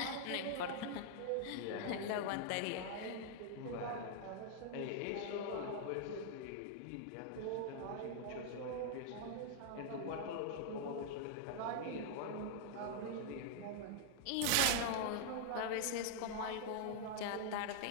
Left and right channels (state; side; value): different; both; correlation -0.01